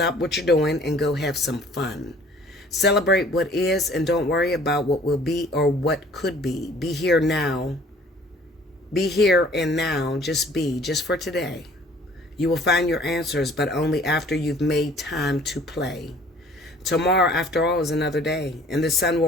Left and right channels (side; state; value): both; normal; correlation 0.53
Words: what you're doing and go have some fun. Celebrate what is and don't worry about what will be or what could be. Be here now. Be here and now. Just be, just for today. You will find your answers, but only after you've made time to play. Tomorrow, after all, is another day, and the sun